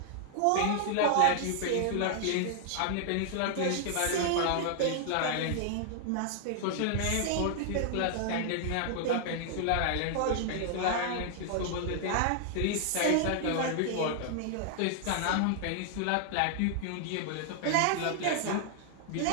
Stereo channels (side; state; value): both; different; correlation -0.01